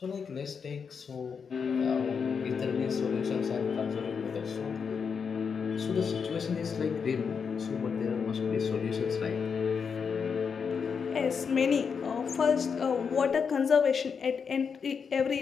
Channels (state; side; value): quieter; right; 6.1 dB